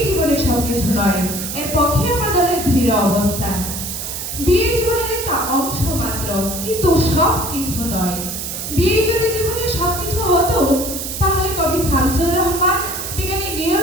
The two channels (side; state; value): right; noise; hiss, 6 dB below the sound